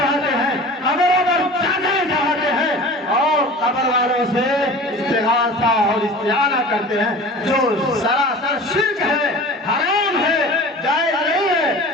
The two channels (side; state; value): both; normal; correlation 0.39